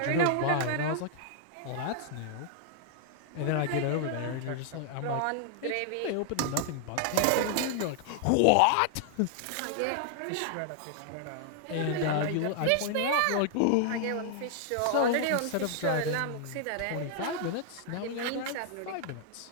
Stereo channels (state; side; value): different; both; correlation 0.00